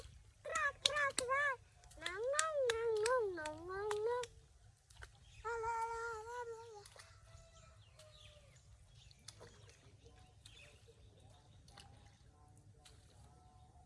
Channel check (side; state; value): both; identical; correlation 1.00